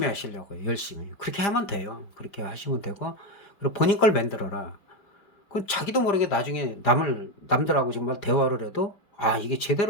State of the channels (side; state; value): right; late; 5.0 ms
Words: 하시려고요. 열심히. 그렇게 하면 돼요. 그렇게 하시면 되고, 그리고 본인 걸 만들어라. 그 자기도 모르게 나중에 남들하고 정말 대화를 해도 이게